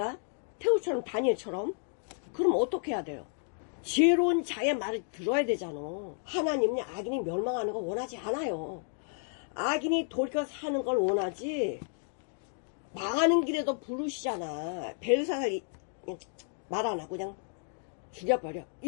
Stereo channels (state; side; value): silent; right; 57 dB below the other